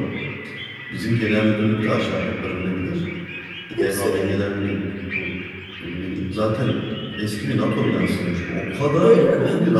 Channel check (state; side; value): identical; both; correlation 1.00